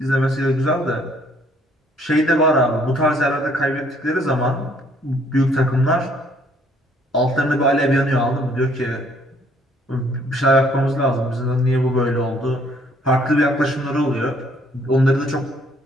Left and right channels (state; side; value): normal; both; correlation 0.63